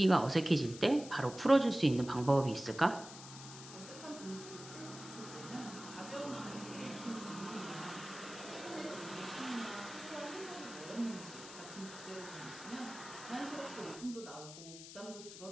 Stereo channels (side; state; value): left; noise; hiss, 13 dB below the sound